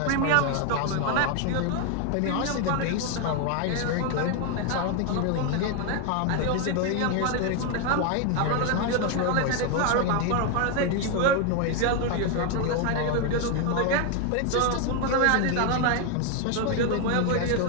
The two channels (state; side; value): different; both; correlation 0.01